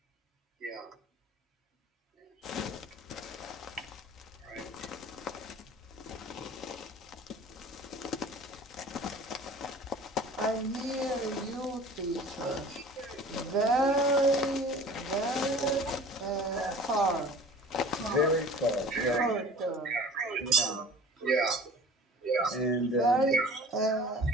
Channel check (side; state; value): both; normal; correlation 0.43